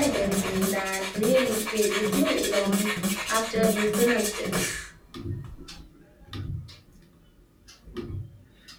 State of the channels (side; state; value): both; identical; correlation 1.00